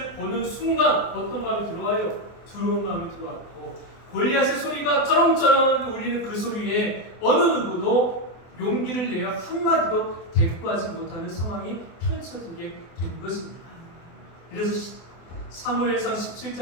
보는 순간 어떤 마음이 들어와요? 두려운 마음이 들어왔고, 골리앗의 소리가 쩌렁쩌렁 울리는 그 소리에 어느 누구도 용기를 내어 한마디도 대꾸하지 못하는 상황이 펼쳐지게 된 것입니다. 그래서 사무엘상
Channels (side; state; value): right; late; 24 ms